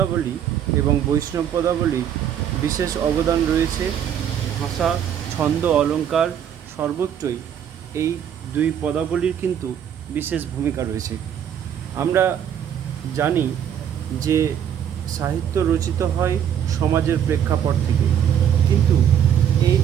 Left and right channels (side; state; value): left; quieter; 9.2 dB